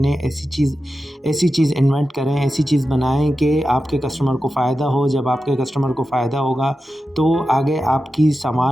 ऐसी चीज़ इन्वेंट करें, ऐसी चीज़ बनाएं कि आपके कस्टमर को फ़ायदा हो। जब आपके कस्टमर को फ़ायदा होगा तो आगे आपकी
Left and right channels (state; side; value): normal; both; correlation 0.92